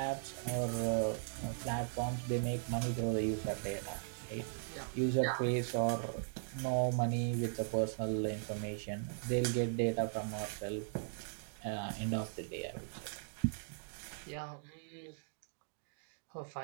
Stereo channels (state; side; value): silent; left; digital silence